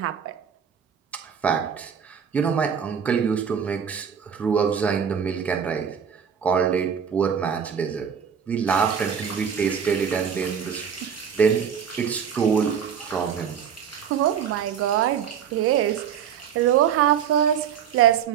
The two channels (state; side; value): quieter; left; 7.8 dB